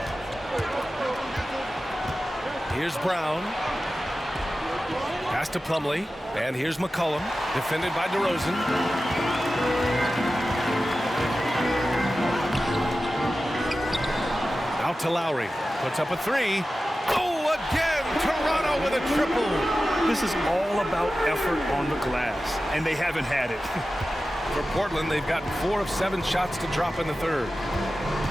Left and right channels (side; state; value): both; normal; correlation 0.94